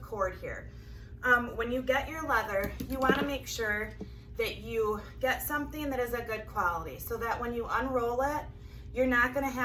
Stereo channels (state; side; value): identical; both; correlation 1.00